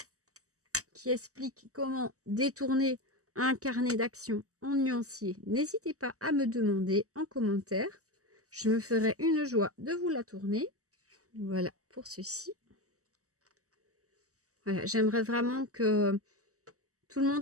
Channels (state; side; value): late; left; 0.66 ms